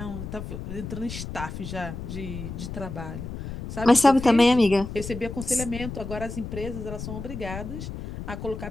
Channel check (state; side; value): noise; left; rumble, 8 dB below the sound